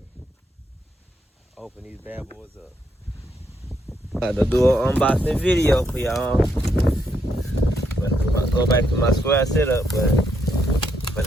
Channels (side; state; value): both; normal; correlation 0.77